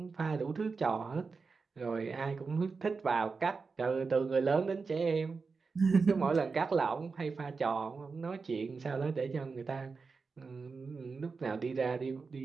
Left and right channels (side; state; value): left; quieter; 4.7 dB